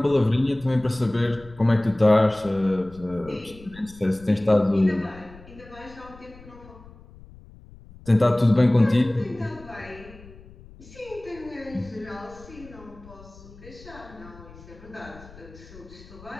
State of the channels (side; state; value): left; noise; rumble, 20 dB below the sound